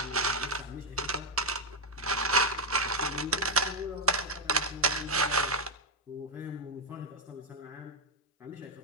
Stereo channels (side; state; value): both; normal; correlation 0.02